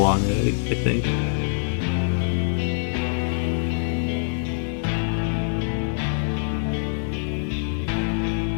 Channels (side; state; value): right; silent; digital silence